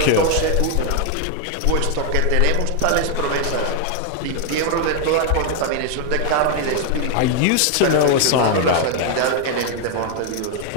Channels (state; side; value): different; both; correlation 0.00